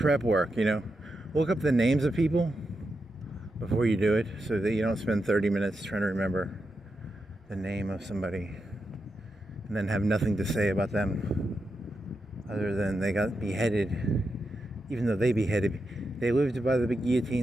work, Look up the names of people before you do it so that you don't spend 30 minutes trying to remember the name of somebody and then have nothing to say about them other than they got beheaded. Even though they lived by the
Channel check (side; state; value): both; normal; correlation 0.87